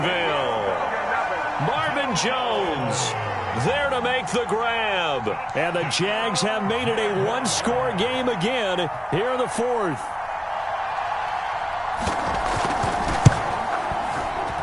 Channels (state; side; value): identical; both; correlation 1.00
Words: Marvin Jones there to make the grab. And the Jags have made it a 1-score game again here in the 4th.